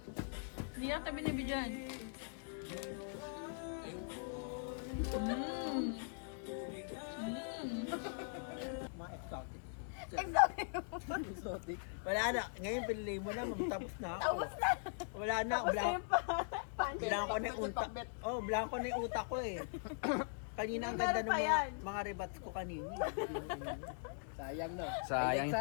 Hindi natin binibigyan. Mga exotic. Exotic. Wala na. Ngayon pinili mo na, tapos na ako. Tapos na. Wala na. Blanco na yung utak. Oh, blanco na yung utak ko eh. Kanina ang ganda ng mga rebats ko kanina. Sayang no. Sayang. Highlights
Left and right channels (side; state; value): right; silent; digital silence